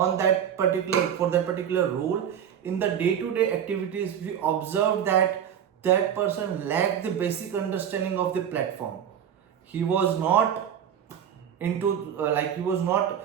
that particular role, in the day-to-day activities, we observed that that person lacked the basic understanding of the platform. He was not into he was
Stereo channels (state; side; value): quieter; left; 9.0 dB